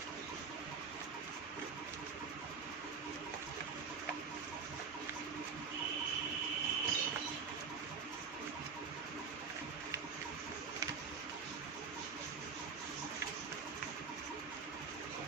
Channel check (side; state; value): left; quieter; 5.5 dB